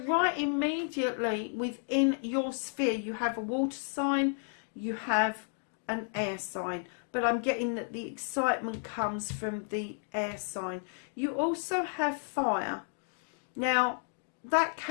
right immediately within your sphere, you have a water sign, you have an air sign. But I'm getting that the excitement comes from the air sign. You also have fire. Now, that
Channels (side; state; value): right; silent; 56 dB below the other